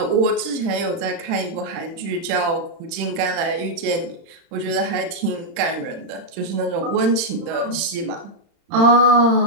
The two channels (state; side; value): late; left; 36 ms